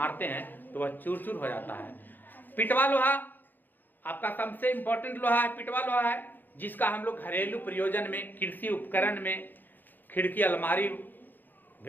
हैं तो वह चूर चूर हो जाता है। पिटवा लोहा आपका सबसे इंपॉर्टेंट लोहा है, पिटवा लोहा है, जिसका हम लोग घरेलू प्रयोजन में, कृषि उपकरण में, खिड़की, अलमारी,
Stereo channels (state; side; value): late; right; 0.089 ms